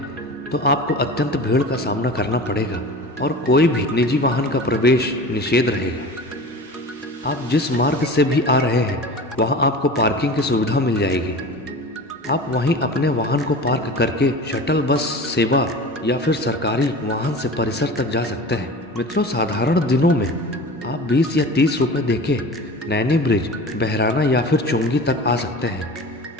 तो आपको अत्यंत भीड़ का सामना करना पड़ेगा और कोई भी निजी वाहन का प्रवेश निषेध रहेगा। आप जिस मार्ग से भी आ रहे हैं वहां आपको पार्किंग की सुविधा मिल जाएगी। आप वहीं अपने वाहन को पार्क करके शटल बस सेवा या फिर सरकारी वाहन से परिसर तक जा सकते हैं। मित्रों, साधारण दिनों में आप 20 या 30 रुपये देके नैनी ब्रिज, बहराना या फिर चुंगी तक आ सकते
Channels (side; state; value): both; normal; correlation 0.35